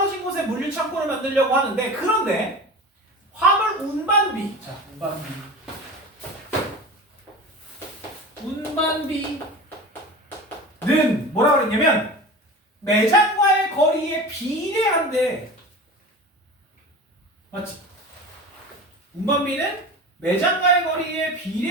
곳에 물류 창고를 만들려고 하는데, 그런데 화물 운반비, 자, 운반비는 뭐라 그랬냐면 매장과의 거리에 비례한데, 맞지? 운반비는 매장과의 거리에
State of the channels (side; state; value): both; normal; correlation 0.33